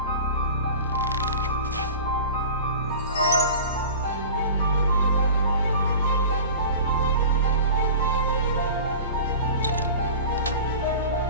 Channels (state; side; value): inverted; both; correlation -0.37